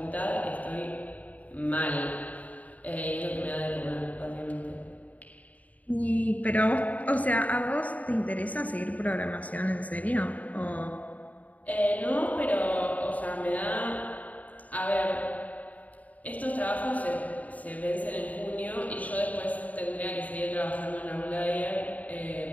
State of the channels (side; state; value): right; late; 0.072 ms